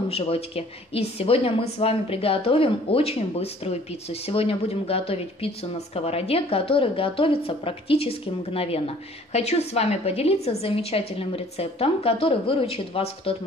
Животики. И сегодня мы с вами приготовим очень быструю пиццу. Сегодня будем готовить пиццу на сковороде, которая готовится практически мгновенно. Хочу с вами поделиться замечательным рецептом, который выручит вас в тот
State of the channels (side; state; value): both; normal; correlation 0.54